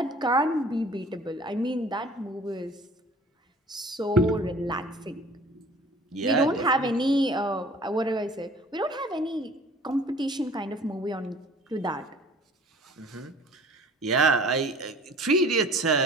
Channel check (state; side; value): normal; both; correlation 0.48